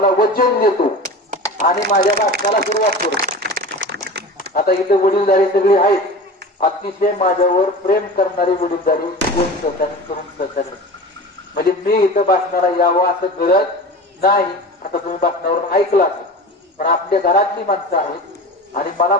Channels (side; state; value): both; normal; correlation 0.33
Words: वचन देतो आणि माझ्या भाषणाला सुरुवात करू. आता इथे वडीलधारी सगळे आहेत, अतिशय माझ्यावर प्रेम करणारी वडीलधारी कोण सहकार्य करून सहकार्य. म्हणजे मी इथं भाषणाला यावं असं करत नाही. आता तुम्ही भाषणावरून ऐकलं असेल, पण आपल्या घरातली माणसं आहेत आणि मला